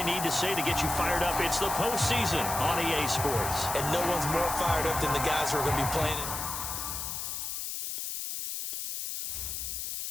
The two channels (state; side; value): noise; left; hiss, 4 dB below the sound